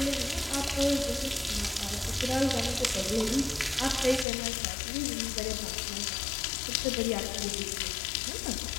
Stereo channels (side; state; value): right; drops out; at 4.2 s